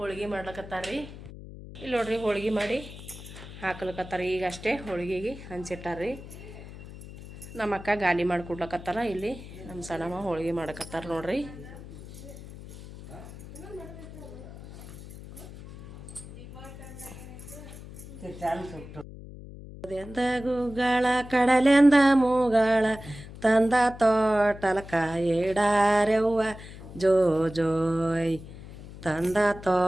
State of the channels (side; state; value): left; noise; hum, 14 dB below the sound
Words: ಮಾಡ್ಲಕತ್ತಾರ್ರಿ. ಇಲ್ಲಿ ನೋಡ್ರಿ ಹೋಳಿಗೆ ಮಾಡಿ ಹಾಕ್ಲಕತ್ತಾರ. ಈಗ ಅಷ್ಟೇ ಹೋಳಿಗೆಗೆ ಹಂಚಿಟ್ಟಾರ್ರಿ. ನಮ್ಮ ಅಕ್ಕ ಗಾಲಿ ಮಾಡಿ ಕೊಡ್ಲಕತ್ತಾರ. ಇಲ್ಲಿ ನಮ್ಮ ಸಣ್ಣಮ್ಮ ಹೋಳಿಗೆ ಮಾಡಕತ್ತಾರ ನೋಡ್ರಿ. ಎಂದ ಗುಗ್ಗಳ ಕಡಲೆಂದ ಮೂಗಳ ತಂದ ತೋಟಲಕ ಇಡಾರೆವ್ವ ಜೋ ಜೋಯ್. ತಂದ